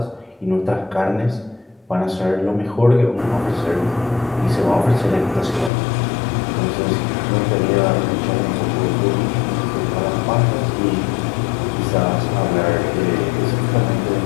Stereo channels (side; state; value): right; drops out; at 5.7 s